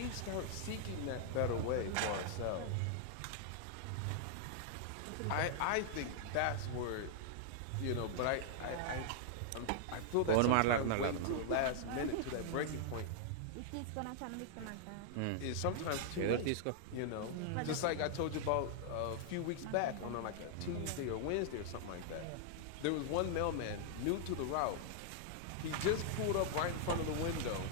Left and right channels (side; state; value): both; different; correlation -0.01